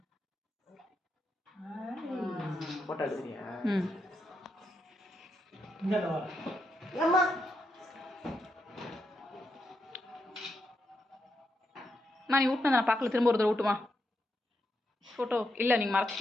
போட்டோ எடுக்கிறியா? அம்மா நீ ஊட்டினதை நான் பார்க்கல, திரும்ப ஒரு தடவை ஊட்டுமா ஃபோட்டோ? இல்லை, நீங்கள்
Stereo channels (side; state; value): both; normal; correlation 0.83